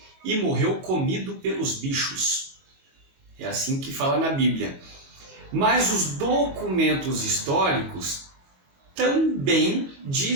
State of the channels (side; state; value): left; late; 22 ms